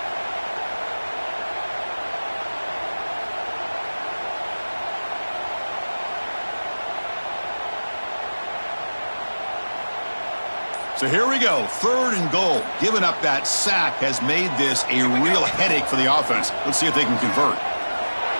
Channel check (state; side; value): inverted; both; correlation -1.00